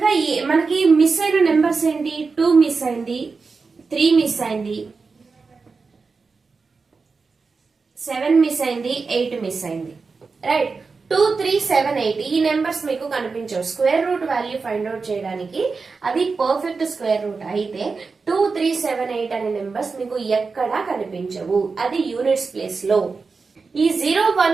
మనకి మిస్ అయిన నెంబర్స్ ఏంటి? 2 మిస్ అయింది, 3 మిస్ అయింది, 7 మిస్ అయింది, 8 మిస్ అయింది. రైట్, 2, 3, 7, 8 ఈ నెంబర్స్ మీకు కనిపించవు. Square root value find out చేయడానికి అది పర్ఫెక్ట్ స్క్వేర్ రూట్ అయితే 2, 3, 7, 8 అనే నెంబర్స్ మీకు ఎక్కడా కనిపించవు, అది యూనిట్స్ ప్లేస్ లో. ఈ 0,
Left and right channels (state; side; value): quieter; left; 4.5 dB